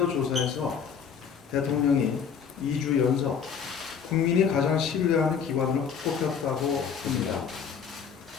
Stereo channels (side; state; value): right; quieter; 6.9 dB